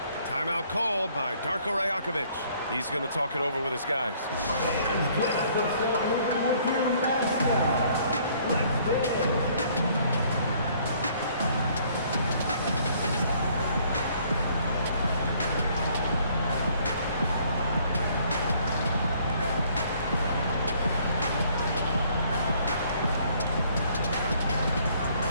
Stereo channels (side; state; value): both; inverted; correlation -0.62